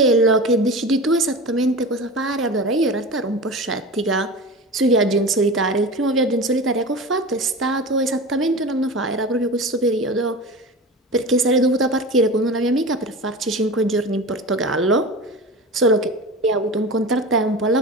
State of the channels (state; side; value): normal; both; correlation 0.31